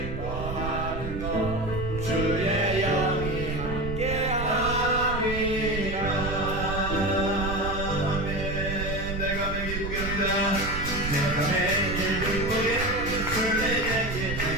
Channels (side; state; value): right; noise; rumble, 6 dB below the sound